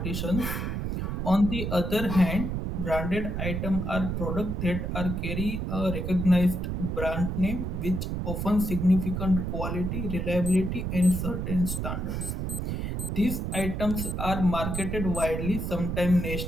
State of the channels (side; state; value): right; noise; rumble, 2 dB below the sound